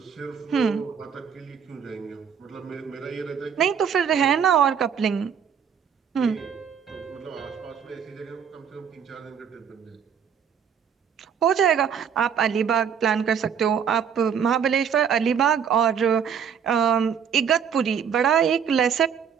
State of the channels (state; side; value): quieter; left; 7.6 dB